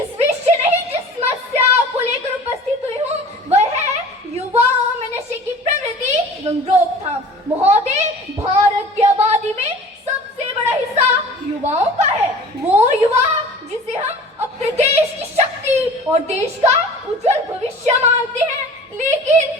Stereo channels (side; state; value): both; normal; correlation 0.42